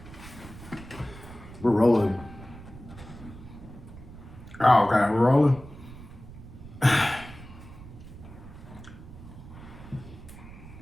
We're rolling. Oh, okay, we're rolling. Got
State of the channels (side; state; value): right; noise; rumble, 16 dB below the sound